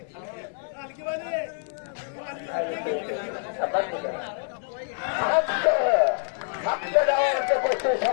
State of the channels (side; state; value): right; silent; 60 dB below the other